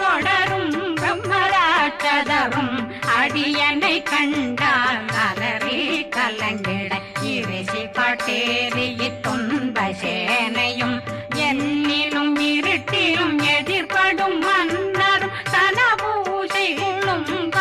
பிரம்மராட்சதரும் அடியனை கண்டால் அலறி கலங்கிட இரிசி காட்டேறிய துன்ப சேனையும் என்னிலும் இருட்டிலும் எதிர்படும் மன்னரும் தனபூசைகளும்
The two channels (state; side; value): identical; both; correlation 1.00